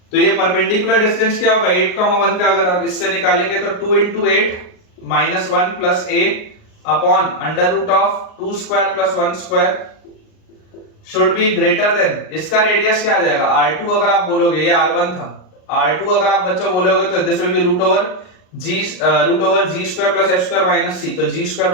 तो ये परपेंडिकुलर डिस्टेंस क्या होगा? 8,1 का अगर आप इससे निकालेंगे तो 2 into 8 minus 1 plus a upon under root of 2 square plus 1 square should be greater than, इसका रेडियस क्या आ जाएगा? R2 अगर आप बोलोगे, ये R1 था, R2 अगर आप बच्चों बोलोगे तो this will be root over G square plus F square minus C. तो जी स्क्वायर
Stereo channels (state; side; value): late; right; 38 ms